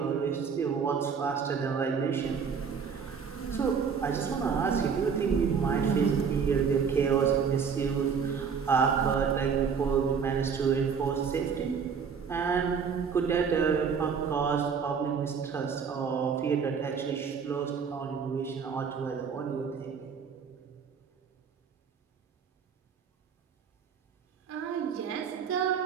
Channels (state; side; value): quieter; left; 6.3 dB